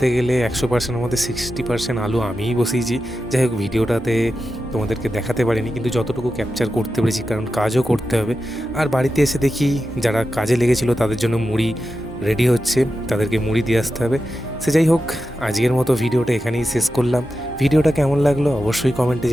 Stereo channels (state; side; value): normal; both; correlation 0.91